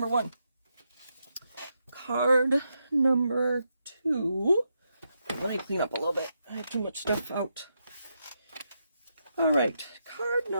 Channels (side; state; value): both; inverted; correlation -0.83